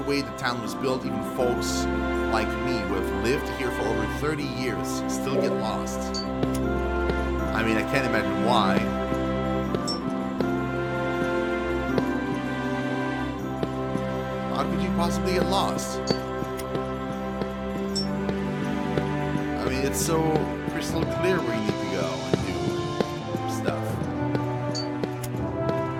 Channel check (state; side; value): identical; both; correlation 1.00